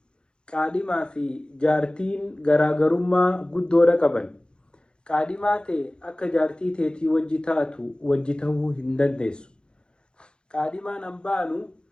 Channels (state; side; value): late; right; 0.050 ms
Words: Qaadhimaa fi jaartiin garaagarummaa guddoodha qaban. Qaadhimaa ta'e akka jaartii teetii wajji taatu wajji ta'uu hin dandeessu. Qaadhimaan hambaanu